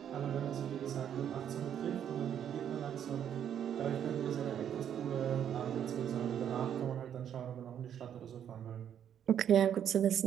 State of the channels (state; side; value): quieter; left; 9.3 dB